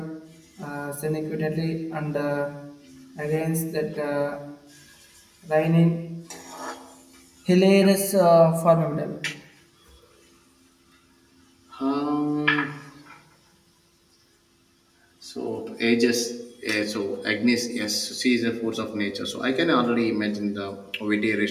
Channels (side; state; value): both; identical; correlation 1.00